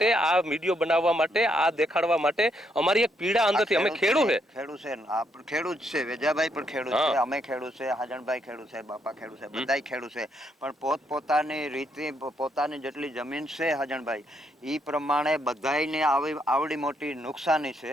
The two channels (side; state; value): both; normal; correlation 0.75